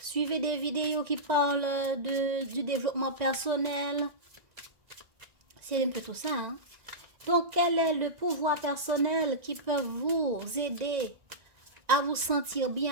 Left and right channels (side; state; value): left; late; 1.9 ms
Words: des vidéos qui parlent du développement personnel. C'est un peu tout ça. Hein? Donc, quel est le pouvoir personnel qui peut vous aider à vous sentir